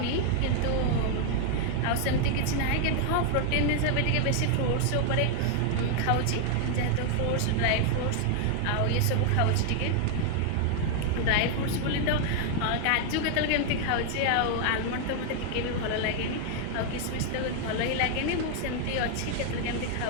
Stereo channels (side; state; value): both; different; correlation 0.00